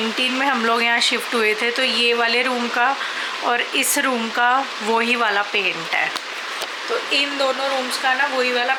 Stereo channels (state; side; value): identical; both; correlation 1.00